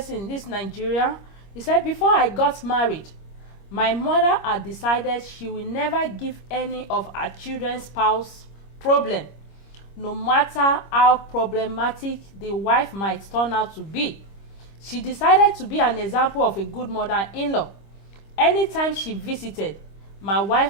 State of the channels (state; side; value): late; right; 25 ms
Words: this Nigeria, he said, before I got married, my mother had decided she will never give any of her children's spouse problem, no matter how problematic the wife might turn out to be. She decided to be an example of a good mother-in-law. Anytime she visited, my